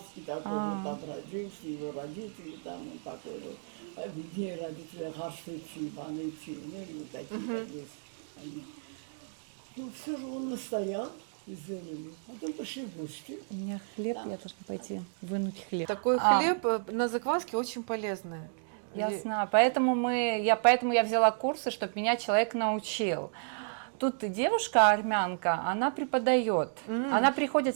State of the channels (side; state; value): left; silent; digital silence